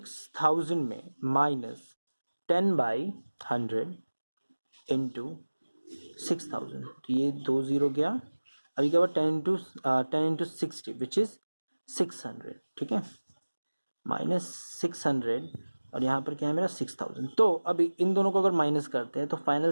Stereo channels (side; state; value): both; inverted; correlation -1.00